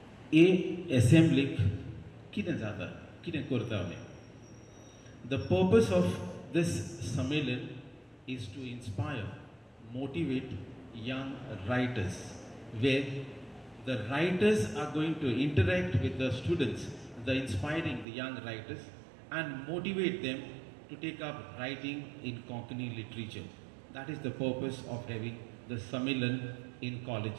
A assembly कितें जाता कितें करता आमी. The purpose of this Sammelan is to inspire, motivate young writers, where the writers are going to interact with the students, the inspiring the young writers, and motivate them to take up writing in Konkani literature. That is the purpose of having the Sammelan in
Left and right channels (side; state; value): left; drops out; at 18.1 s